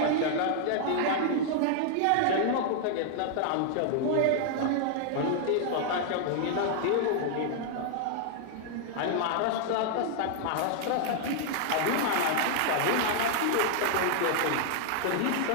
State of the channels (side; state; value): both; different; correlation 0.00